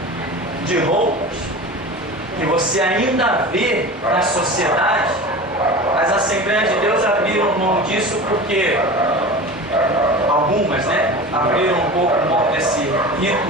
de roupas, que você ainda vê na sociedade, as Assembleias de Deus abriram mão disso porque algumas, né, abriram um pouco mão desse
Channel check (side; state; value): both; normal; correlation 0.33